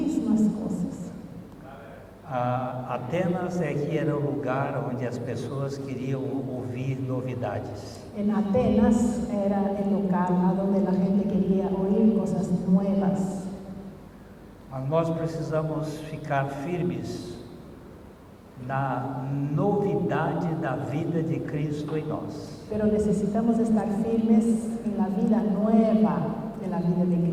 cosas. Atenas é que era o lugar onde as pessoas queriam ouvir novidades. En Atenas era el local a donde la gente quería oír cosas nuevas. Mas nós precisamos ficar firmes na novidade da vida de Cristo em nós. Pero necesitamos estar firmes en la vida nueva de la vida de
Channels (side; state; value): both; identical; correlation 1.00